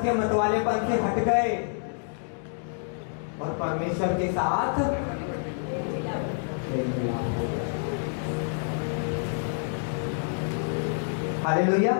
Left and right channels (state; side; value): silent; right; digital silence